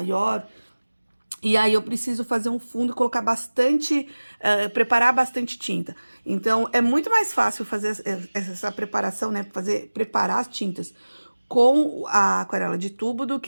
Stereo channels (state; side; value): inverted; both; correlation -1.00